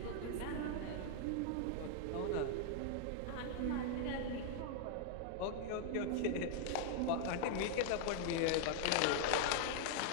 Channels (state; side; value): different; both; correlation -0.01